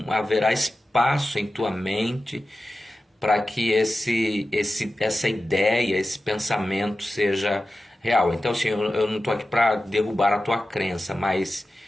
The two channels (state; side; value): normal; both; correlation 0.93